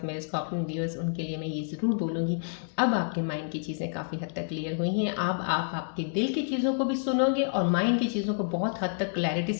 मेरे स्कॉर्पियन व्यूअर्स, उनके लिए मैं ये ज़रूर बोलूँगी, अब आपके माइंड की चीज़ें काफ़ी हद तक क्लियर हुई हैं। अब आप आपके दिल की चीज़ों को भी सुनोगे और माइंड की चीज़ों को बहुत हद तक क्लैरिटी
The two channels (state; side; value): silent; right; digital silence